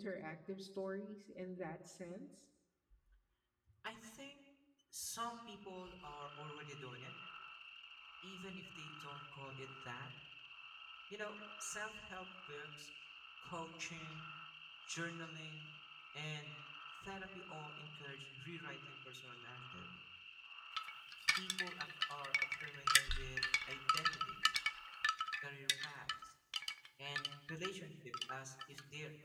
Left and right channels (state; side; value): identical; both; correlation 1.00